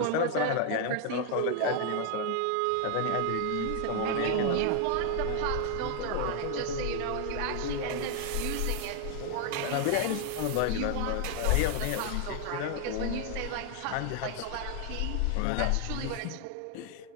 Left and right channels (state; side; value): different; both; correlation 0.00